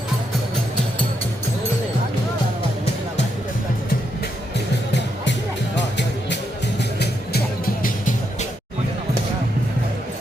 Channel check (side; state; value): both; normal; correlation 0.80